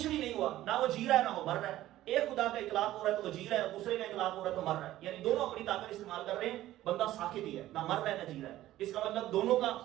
بھی نہیں ہوا، نہ وہ جی رہا ہے نہ وہ مر رہا ہے. ایک خدا کا اطلاق ہو رہا ہے تو وہ جی رہا ہے، دوسرے کا اطلاق ہو رہا ہے تو مر رہا ہے، یعنی دونوں اپنی طاقت استعمال کر رہے ہیں. بندہ ساکت ہی ہے، نہ مر رہا ہے نہ جی رہا ہے. اس کا مطلب دونوں کا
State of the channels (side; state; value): left; quieter; 14.6 dB